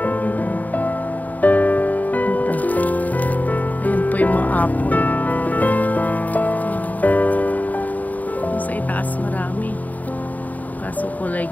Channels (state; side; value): late; right; 0.077 ms